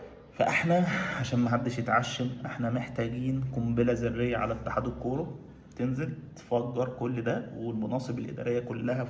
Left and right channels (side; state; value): both; identical; correlation 1.00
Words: فاحنا عشان ما حدش يتعشم، احنا محتاجين قنبله ذريه على اتحاد الكوره، تنزل تفجر كل ده والمناصب الاداريه كلها